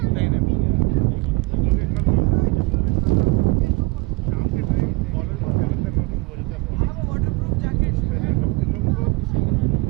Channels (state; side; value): quieter; left; 21.1 dB